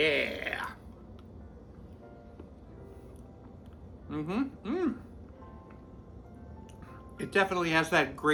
It definitely has that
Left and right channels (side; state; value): both; identical; correlation 1.00